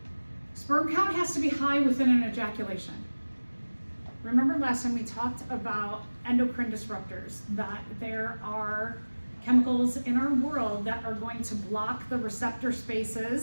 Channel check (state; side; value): inverted; both; correlation -1.00